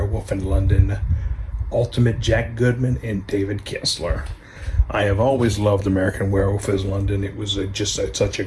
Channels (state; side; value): identical; both; correlation 1.00